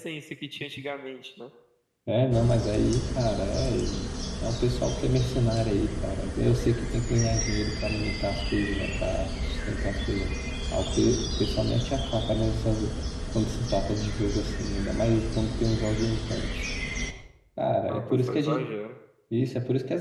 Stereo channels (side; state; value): both; identical; correlation 1.00